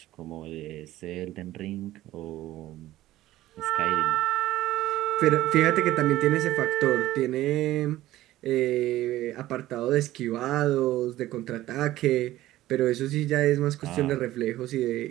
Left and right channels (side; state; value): left; quieter; 15.4 dB